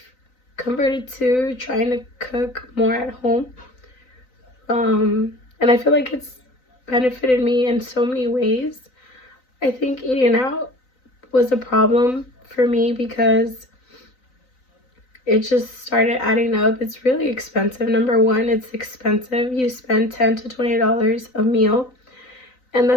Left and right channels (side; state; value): right; late; 3.9 ms